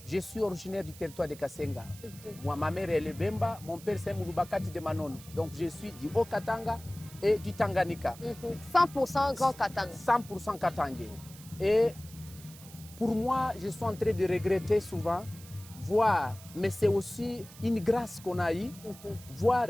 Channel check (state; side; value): noise; right; hiss, 19 dB below the sound